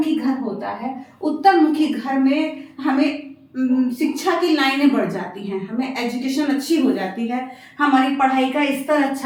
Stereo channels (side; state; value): both; identical; correlation 1.00